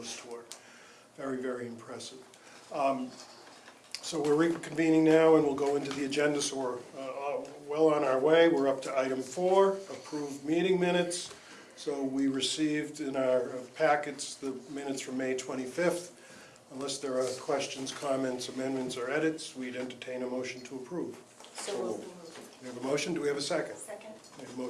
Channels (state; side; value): identical; both; correlation 1.00